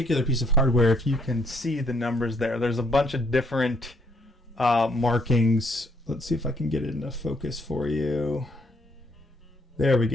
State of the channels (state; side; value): normal; both; correlation 0.69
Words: piece of hardware, if you can see the numbers there, there's a bunch of different markings. Let's see if I can get it into focus for you. There we